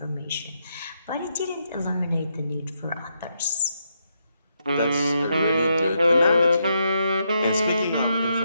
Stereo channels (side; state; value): both; inverted; correlation -0.80